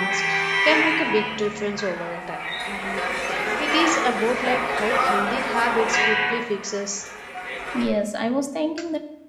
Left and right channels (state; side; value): identical; both; correlation 1.00